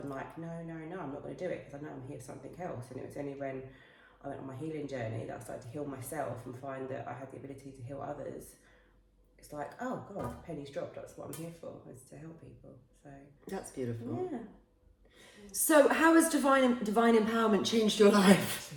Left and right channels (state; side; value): identical; both; correlation 1.00